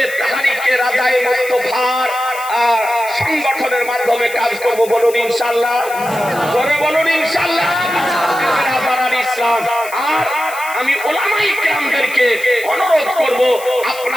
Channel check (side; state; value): left; noise; hiss, 15 dB below the sound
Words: তাহরিকে রাজায়ে মুস্তাফার সংগঠনের মাধ্যমে কাজ করব। বলুন ইনশাআল্লাহ, জোরে বলুন ইনশাআল্লাহ। ইসলাম আর আমি উলামায়ে কেরামদেরকে অনুরোধ করব,